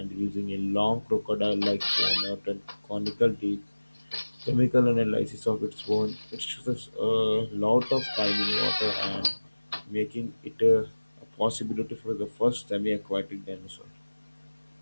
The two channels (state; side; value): inverted; both; correlation -1.00